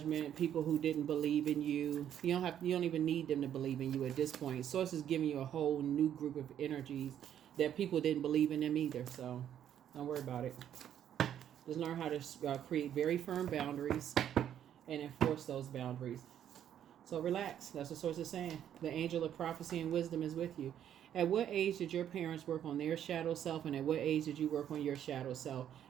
people who didn't believe in you. You don't even need them to believe in you at this point. Source is giving you a whole new group of energies that people didn't believe in them either. So don't worry about it. Just learn how to create very firm boundaries and enforce those boundaries. So relax. That's what Source is saying. The angel of prophecy and wisdom is with you. At what age did your parents work on their shadow self, and at what age did you work on your shadow self?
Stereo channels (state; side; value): quieter; left; 10.1 dB